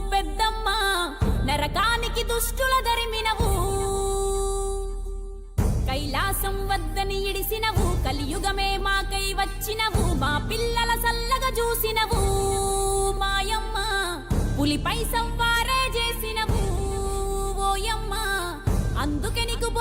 పెద్దమ్మ, నరకానికి దుష్టుల దరిమినవు. కైలాసం వద్దని ఇడిసినవు, కలియుగమే మాకై వచ్చినవు, మా పిల్లల సల్లగా చూసినవు మాయమ్మ, పులిపై సంవారే చేసినవు ఓయమ్మ, అందుకే నీకు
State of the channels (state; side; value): identical; both; correlation 1.00